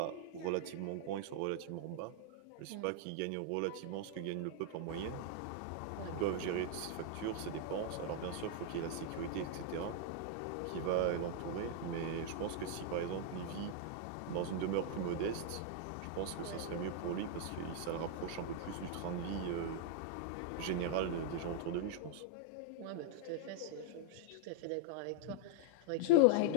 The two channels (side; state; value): both; different; correlation 0.00